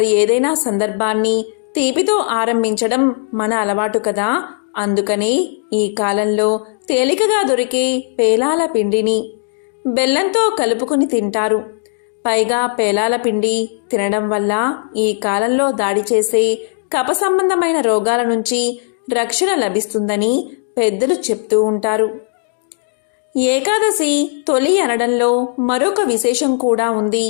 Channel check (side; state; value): right; silent; digital silence